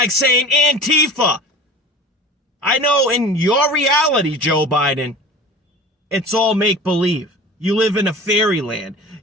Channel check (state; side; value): normal; both; correlation 0.38